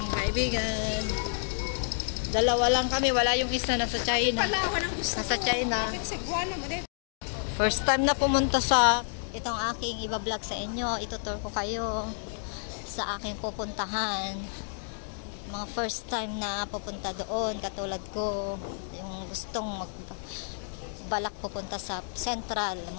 kaibigan. Dalawa lang kami, wala yung isa nasa China. Nasa China. First time na pumunta sa itong aking iba-vlog sa inyo. Itutur ko kayo sa aking pupuntahan. Mga first time na pupunta doon, katulad ko, yung gustong balak pupunta sa Central,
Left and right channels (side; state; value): right; silent; digital silence